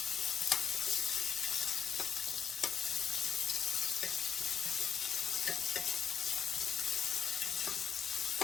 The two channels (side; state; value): right; quieter; 7.6 dB